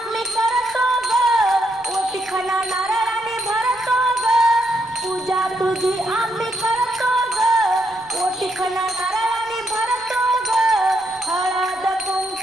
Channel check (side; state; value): right; noise; rumble, 30 dB below the sound